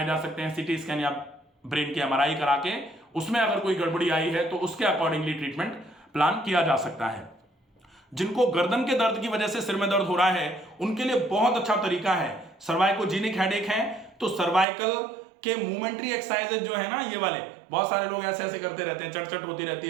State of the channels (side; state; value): left; drops out; at 14.7 s